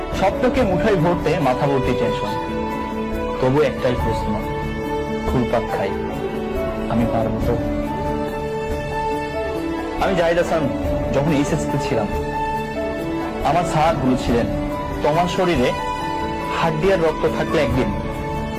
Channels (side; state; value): both; identical; correlation 1.00